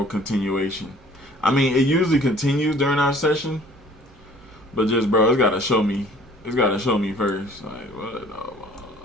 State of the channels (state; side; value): normal; both; correlation 0.53